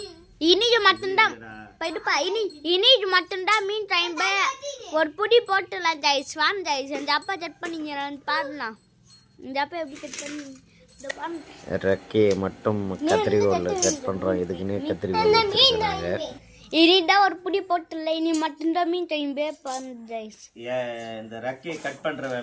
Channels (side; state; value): both; identical; correlation 1.00